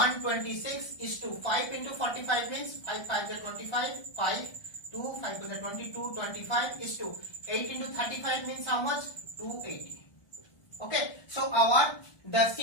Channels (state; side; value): late; right; 1.3 ms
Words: is to 5 into 45 means 5 5 is 25. 5 2 5 is 22. 25 is to 8 into 35 means how much? 280. Okay, so the